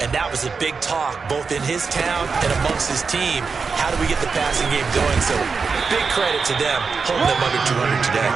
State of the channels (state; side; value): quieter; left; 5.0 dB